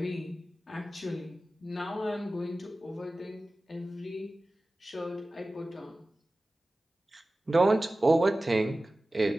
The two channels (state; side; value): normal; both; correlation 0.96